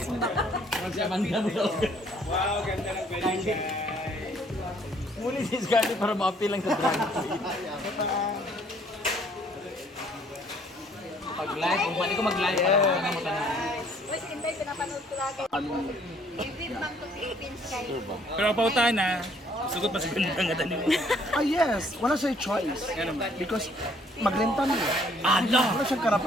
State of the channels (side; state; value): both; normal; correlation 0.62